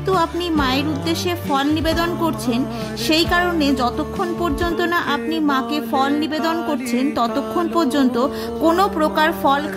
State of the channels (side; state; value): both; identical; correlation 1.00